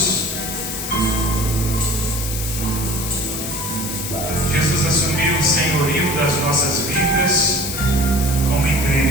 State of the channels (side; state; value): left; noise; hiss, 6 dB below the sound